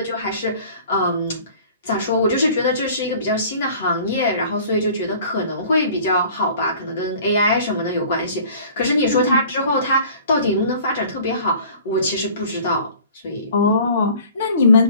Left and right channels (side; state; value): both; inverted; correlation -0.48